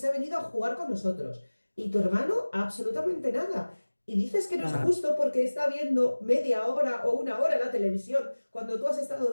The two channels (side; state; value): both; inverted; correlation -1.00